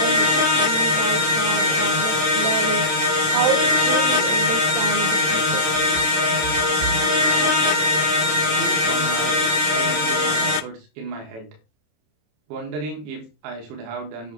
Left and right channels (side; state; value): left; late; 27 ms